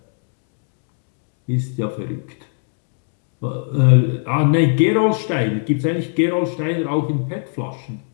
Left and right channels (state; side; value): silent; right; digital silence